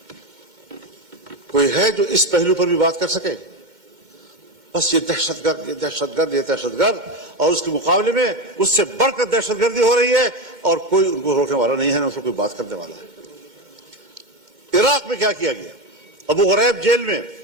کوئی ہے جو اس پہلو پر بھی بات کر سکے؟ بس یہ دہشت گرد، یہ دہشت گرد، یہ دہشت گرد، اور اس کے مقابلے میں اس سے بڑھ کر دہشت گردی ہو رہی ہے اور کوئی ان کو روکنے والا نہیں ہے، نہ اس کو کوئی بات کرنے والا ہے. عراق میں کیا کیا گیا؟ ابو غریب جیل میں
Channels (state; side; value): late; left; 2.1 ms